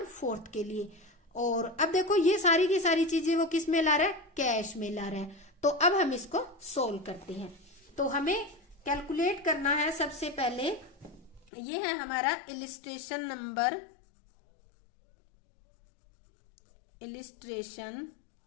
के लिए। और अब देखो ये सारी की सारी चीजें वो किस में ला रहा है, कैश में ला रहा है। तो अब हम इसको सोल्व करते हैं। तो हमें कैलकुलेट करना है, सबसे पहले ये है हमारा इलिस्ट्रेशन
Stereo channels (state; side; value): drops out; right; at 11.5 s